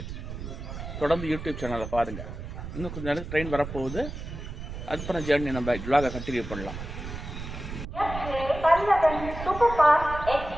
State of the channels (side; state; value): right; noise; rumble, 9 dB below the sound